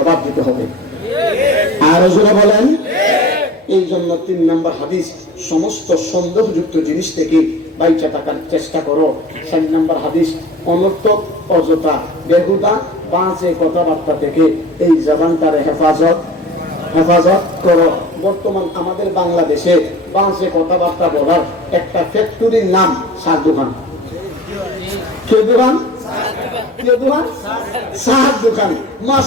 দিতে হবে। আর জোরে বলেন। এই জন্য 3 নম্বর হাদিস, সমস্ত সন্দেহযুক্ত জিনিস থেকে বাইচা থাকার চেষ্টা করো। 4 নম্বর হাদিস, অনর্থক অযথা বেহুদা বাজে কথাবার্তা থেকে এই জবানটারে হেফাজত করো। বর্তমান আমাদের বাংলাদেশে বাজে কথাবার্তা বলার একটা ফ্যাক্টরির নাম সার দোকান। কে দোকান? চার দোকান।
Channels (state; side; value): normal; both; correlation 0.38